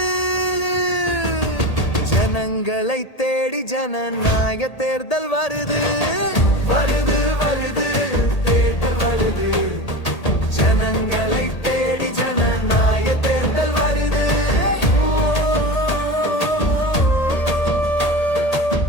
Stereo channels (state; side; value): late; right; 1.8 ms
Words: ஜனங்களை தேடி ஜனநாயக தேர்தல் வருது. வருது வருது தேர்தல் வருது, ஜனங்களை தேடி ஜனநாயக தேர்தல் வருது.